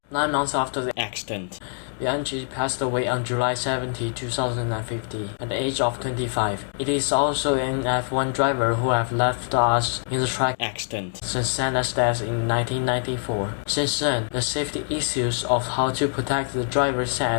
9 months after the accident, Bianchi passed away on July 17, 2050, at the age of 25. It is also an F1 driver who have left us in the track accident since Senna's death in 1994. Since then, the safety issues of how to protect the driver's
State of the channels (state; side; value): silent; right; digital silence